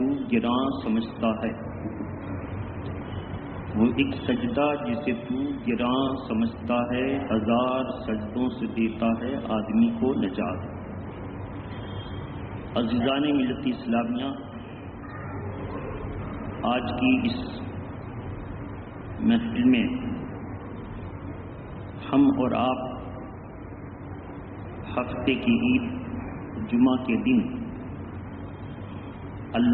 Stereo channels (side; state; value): both; identical; correlation 1.00